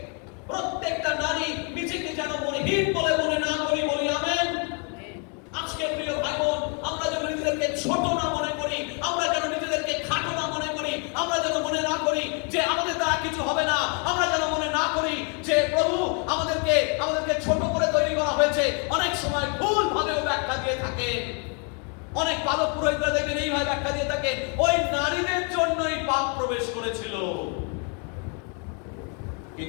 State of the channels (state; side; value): quieter; right; 37.9 dB